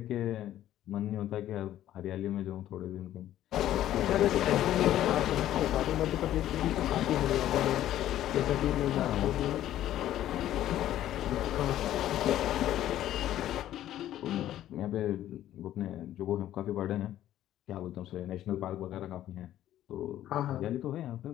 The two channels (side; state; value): right; quieter; 12.7 dB